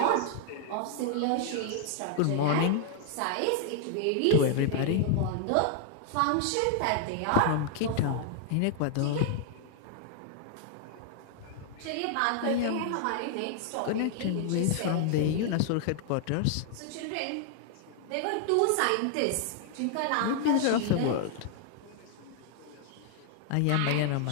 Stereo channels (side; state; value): both; different; correlation 0.00